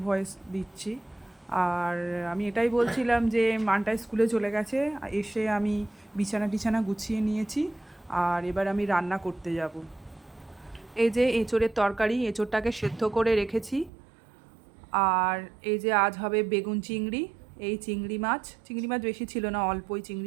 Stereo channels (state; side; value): drops out; left; at 13.9 s